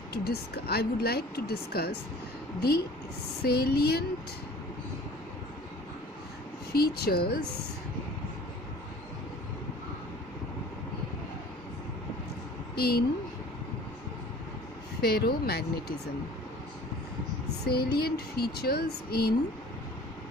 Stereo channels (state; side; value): normal; both; correlation 0.47